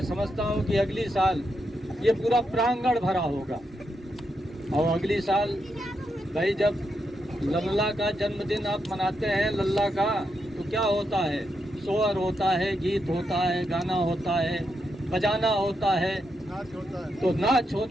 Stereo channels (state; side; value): normal; both; correlation 0.83